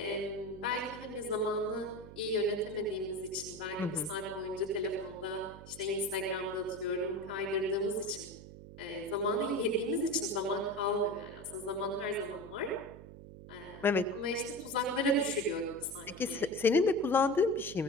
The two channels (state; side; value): noise; right; hum, 15 dB below the sound